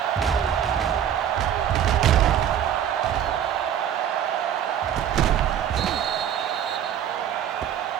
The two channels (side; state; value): left; quieter; 9.7 dB